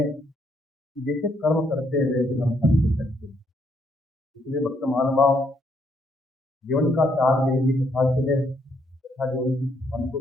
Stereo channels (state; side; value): normal; both; correlation 0.72